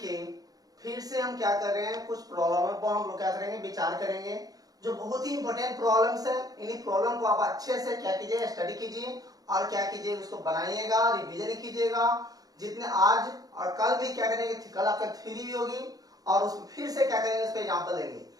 फिर से हम क्या कर रहे हैं, कुछ प्रॉब्लम को हम लोग क्या करेंगे, विचार करेंगे जो बहुत ही इंपॉर्टेंट प्रॉब्लम्स है। इन्हीं प्रॉब्लम को आप अच्छे से क्या कीजिए, स्टडी कीजिए और क्या कीजिए, उसको बनाइएगा, रिवीजन कीजिएगा। जितने आज और कल भी क्या करेंगे, कल आपका थ्योरी भी होगी और उसमें फिर से क्या करेंगे, उस पर एग्जाम्पल देंगे।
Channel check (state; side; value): late; left; 0.18 ms